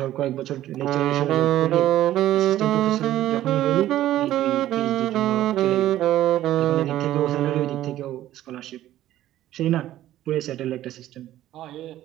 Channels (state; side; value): quieter; left; 13.6 dB